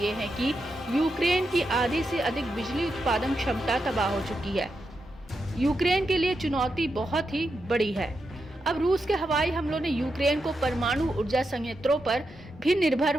हैं कि यूक्रेन की आधी से अधिक बिजली उत्पादन क्षमता तबाह हो चुकी है। यूक्रेन के लिए चुनौती बहुत ही बड़ी है। अब रूस के हवाई हमलों ने यूक्रेन को परमाणु ऊर्जा संयंत्रों पर भी निर्भर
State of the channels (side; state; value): both; normal; correlation 0.86